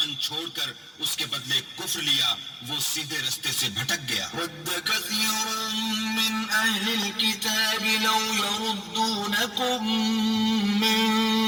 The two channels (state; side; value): identical; both; correlation 1.00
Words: چھوڑ کر اس کے بدلے کفر لیا وہ سیدھے رستے سے بھٹک گیا. ود كثير من أهل الكتاب لو يردونكم من